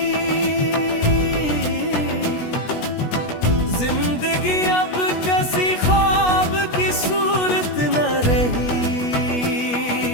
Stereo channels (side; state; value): right; late; 16 ms